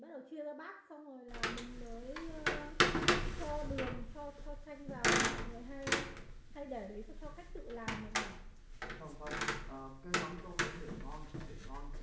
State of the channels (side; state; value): both; identical; correlation 1.00